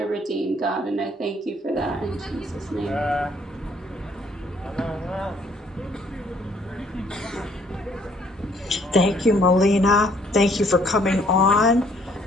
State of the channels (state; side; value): normal; both; correlation 0.63